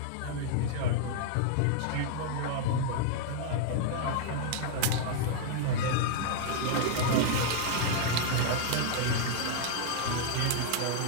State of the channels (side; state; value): both; different; correlation -0.01